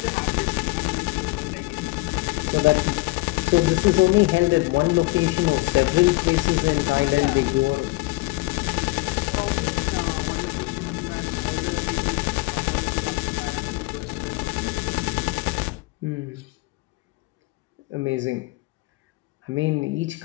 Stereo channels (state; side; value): quieter; right; 23.0 dB